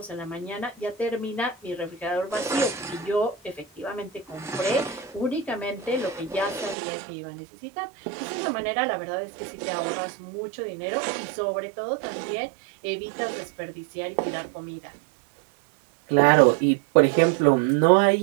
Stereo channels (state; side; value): drops out; left; at 6.8 s